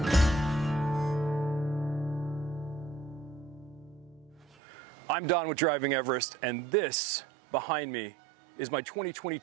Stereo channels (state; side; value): drops out; left; at 4.5 s